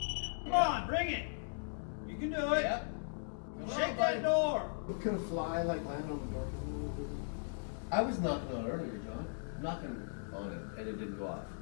Come on, bring it. You can do it. Yep. Shake that door. Could a fly like land on the door? I was knocking on it earlier, John. Knocking on it, and it didn't go off.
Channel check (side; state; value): right; silent; digital silence